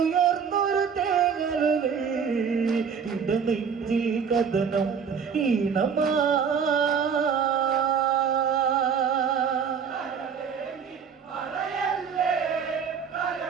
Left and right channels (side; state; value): left; quieter; 6.7 dB